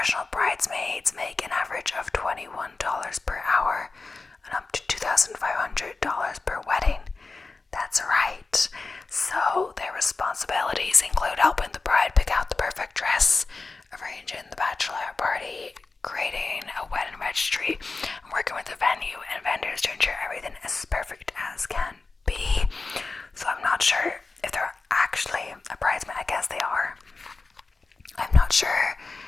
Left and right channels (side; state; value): right; quieter; 3.8 dB